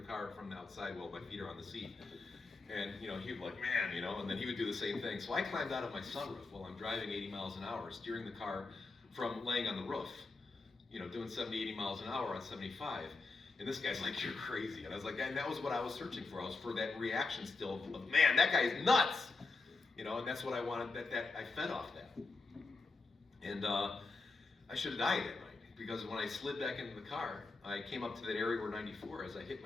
car from the outside while my feet are on the seat. And he'd be like, man, and then he would do the same thing. So I climbed out of my sunroof while I'm driving 80 miles an hour, steering the car from laying on the roof, doing 70, 80 miles an hour on 75. And this guy's like, you're crazy. And I was like, and that was what I was searching for. I was for that reaction still of, man, that guy is nuts. And that's what I wanted. That I fed off that. And I should have died that night, because when I slid back into the car, I came up to that area where 94, as I hit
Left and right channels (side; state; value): right; quieter; 3.8 dB